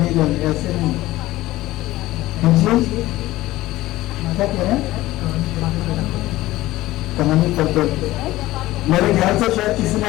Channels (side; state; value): right; quieter; 17.1 dB